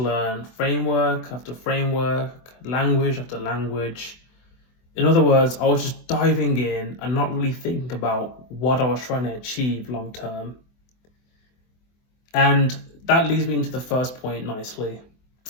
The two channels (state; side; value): late; right; 24 ms